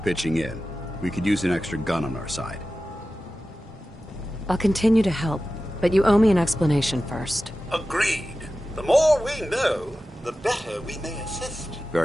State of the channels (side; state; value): both; normal; correlation 0.94